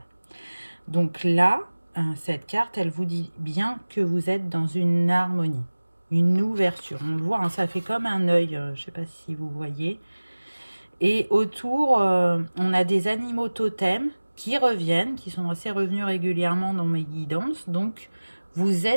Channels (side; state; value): both; inverted; correlation -1.00